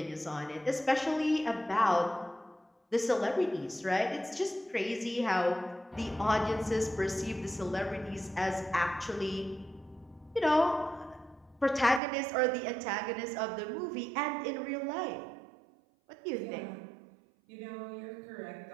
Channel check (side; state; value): left; drops out; at 12.0 s